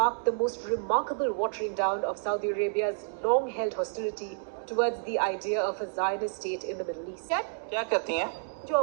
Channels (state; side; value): silent; left; digital silence